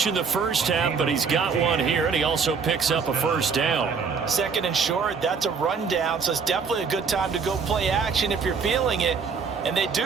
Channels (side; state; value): left; quieter; 5.6 dB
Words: in the first half, but he's got one here, and he also picks up a first down. 2nd and short, that's a rundown, so it's definitely a good time to go play action if you're feeling it. And they